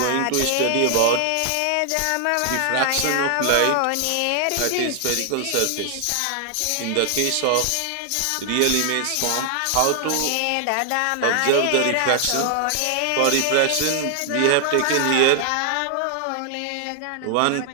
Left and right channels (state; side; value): different; both; correlation 0.00